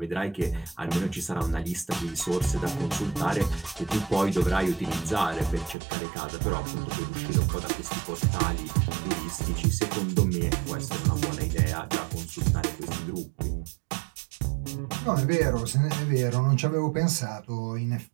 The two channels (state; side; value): drops out; left; at 5.8 s